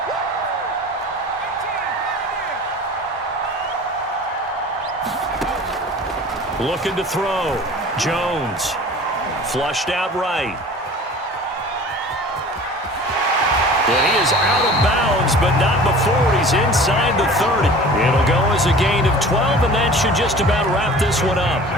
Looking to throw. Jones. Flushed out right. And he is out of bounds, but not before he's inside the 30. It'll go as a gain of 12, and that should just about wrap this one up.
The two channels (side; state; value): both; normal; correlation 0.42